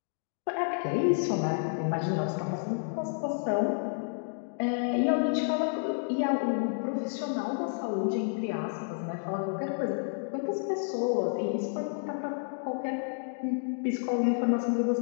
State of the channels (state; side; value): silent; right; digital silence